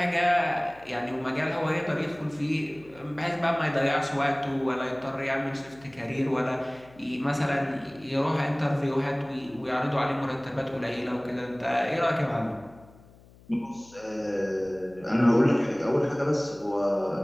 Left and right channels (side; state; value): left; noise; hum, 25 dB below the sound